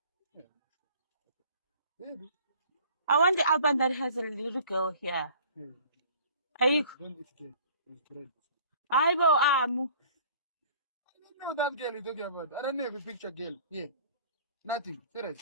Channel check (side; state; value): both; inverted; correlation -0.50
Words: Baby. I want the album that has a little girl here. Ayiko. Don't eat cake. It's bread. Aibo amu. I don't know that girl you're talking about. I don't know if a picture girl. Yeah. Nothing. Serious.